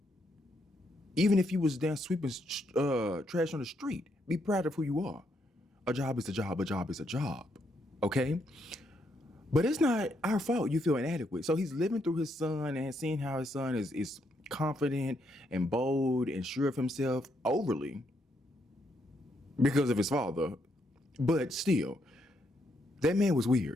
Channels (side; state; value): both; normal; correlation 0.76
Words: even if you was down sweeping trash on the street, be proud of who you are. A job is a job. A job is a job, okay? But it's not our fault you feel inadequate. So he's living through his son and seeing how his son is confident and bold and sure of himself overly because of his father. But still, that man was